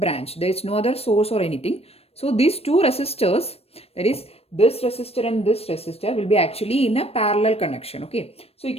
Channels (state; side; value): late; right; 0.29 ms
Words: There is no other source or anything. So these two resistors, that is this resistor and this resistor, will be actually in a parallel connection. Okay. So you